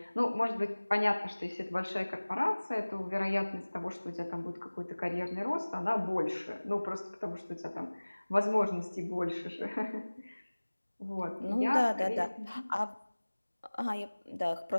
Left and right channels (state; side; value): inverted; both; correlation -1.00